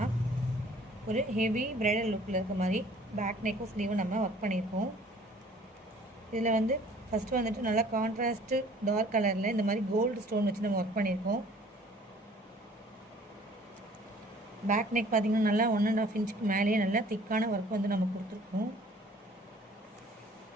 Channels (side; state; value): both; normal; correlation 0.53